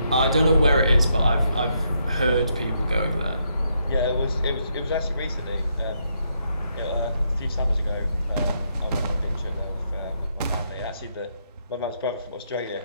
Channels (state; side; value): inverted; both; correlation -0.77